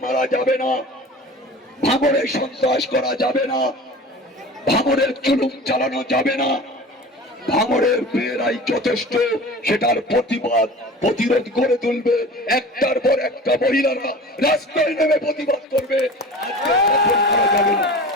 মারা যাবে না, ভাঙড়ে সন্ত্রাস করা যাবে না, ভাঙড়ের জুলুম চালানো যাবে না। ভাঙড়ের মেয়েরাই যথেষ্ট সেটার প্রতিবাদ প্রতিরোধ করে তুলবে। একটার পর একটা মহিলারা রাস্তায় নেমে প্রতিবাদ করবে। আজকে দখল করা যাবে না,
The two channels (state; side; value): normal; both; correlation 0.38